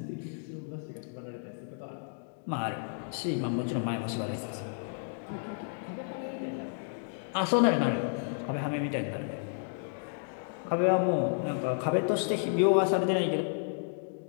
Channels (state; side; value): silent; right; digital silence